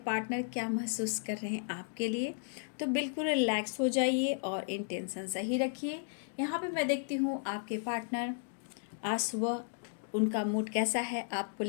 पार्टनर क्या महसूस कर रहे हैं आपके लिए, तो बिल्कुल रिलैक्स हो जाइए और इंटेंशन सही रखिए। यहाँ पे मैं देखती हूँ आपके पार्टनर आज सुबह उनका मूड कैसा है, आपको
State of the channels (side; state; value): right; silent; digital silence